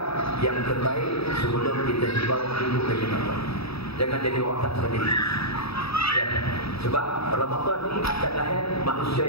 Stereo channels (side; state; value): right; late; 0.77 ms